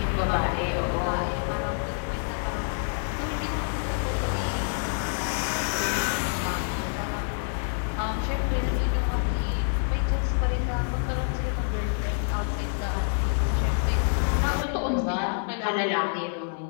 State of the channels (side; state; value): right; silent; digital silence